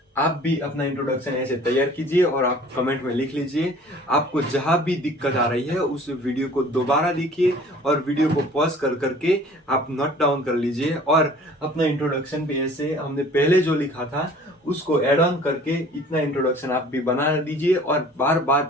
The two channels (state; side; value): normal; both; correlation 0.49